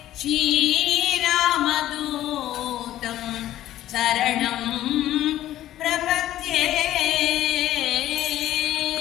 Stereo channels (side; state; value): right; quieter; 13.5 dB